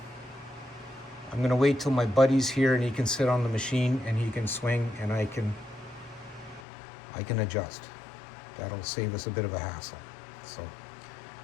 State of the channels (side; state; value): right; drops out; at 6.7 s